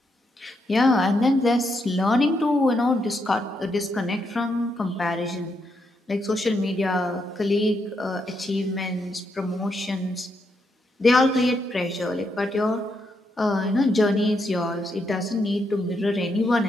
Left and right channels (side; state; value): both; normal; correlation 0.79